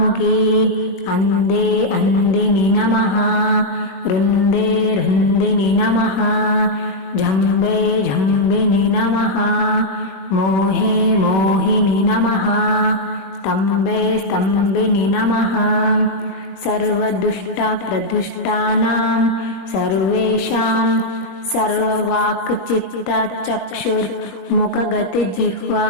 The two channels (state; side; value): late; right; 21 ms